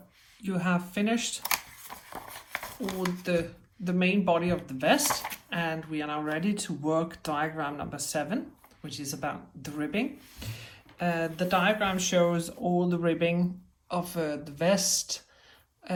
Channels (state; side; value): identical; both; correlation 1.00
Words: you have finished all the main body of the vest, and we are now ready to work diagram number 7, which is about the ribbing. The diagram shows all the ribbing of the vest,